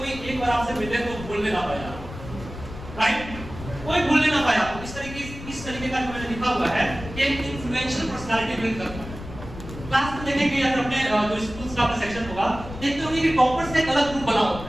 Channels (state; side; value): noise; left; rumble, 12 dB below the sound